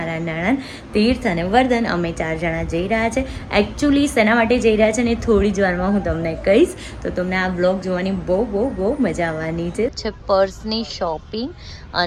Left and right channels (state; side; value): identical; both; correlation 1.00